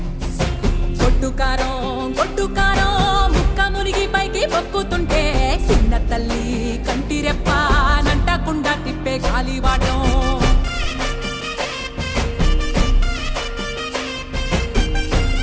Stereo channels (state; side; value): identical; both; correlation 1.00